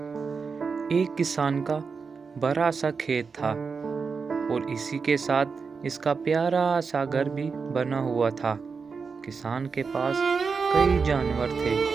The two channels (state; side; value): quieter; left; 5.2 dB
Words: کسان کا بڑا سا کھیت تھا اور اسی کے ساتھ اس کا پیارا سا گھر بھی بنا ہوا تھا۔ کسان کے پاس کئی جانور تھے،